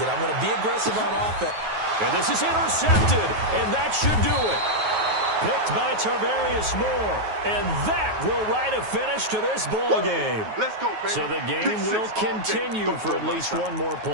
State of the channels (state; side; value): late; left; 9.4 ms